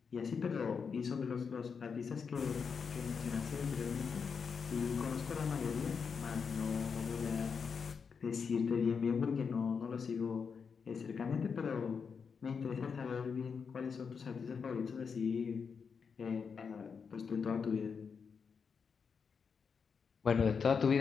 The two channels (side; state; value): right; quieter; 5.9 dB